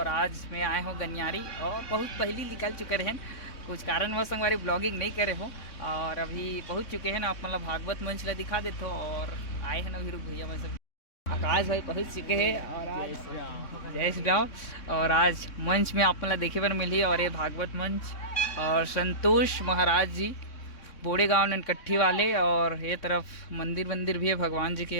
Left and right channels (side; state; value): right; late; 3.6 ms